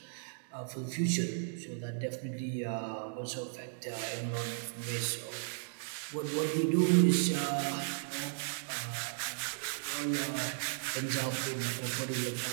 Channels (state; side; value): silent; left; digital silence